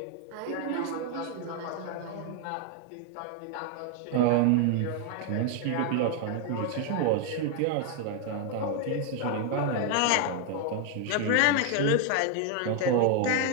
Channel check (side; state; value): both; different; correlation 0.00